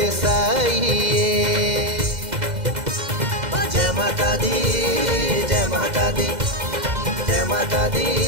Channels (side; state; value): left; late; 2.0 ms